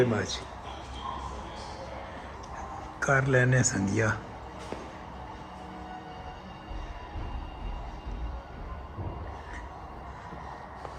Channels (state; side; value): identical; both; correlation 1.00